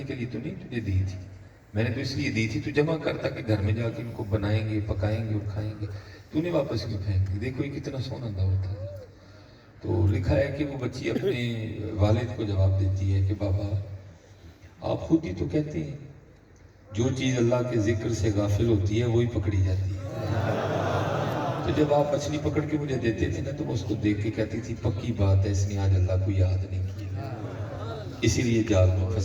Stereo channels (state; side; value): identical; both; correlation 1.00